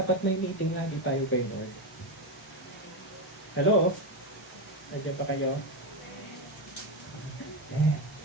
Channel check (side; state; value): both; normal; correlation 0.10